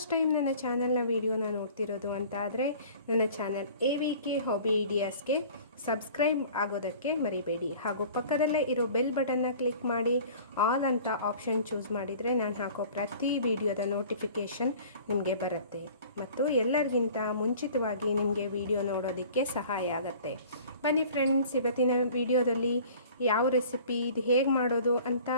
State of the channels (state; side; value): inverted; both; correlation -0.46